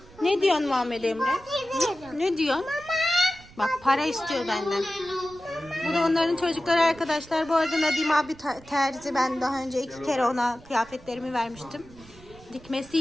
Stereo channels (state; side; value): noise; right; rumble, 22 dB below the sound